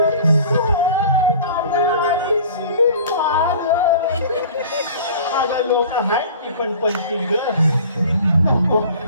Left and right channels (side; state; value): both; inverted; correlation -0.44